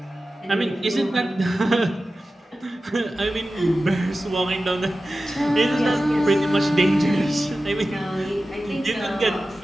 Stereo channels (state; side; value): normal; both; correlation 0.94